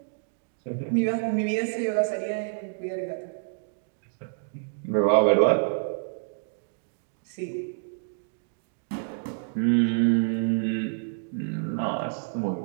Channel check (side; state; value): left; silent; digital silence